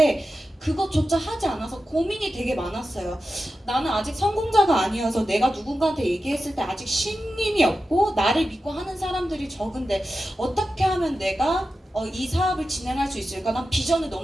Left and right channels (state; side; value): normal; both; correlation 0.92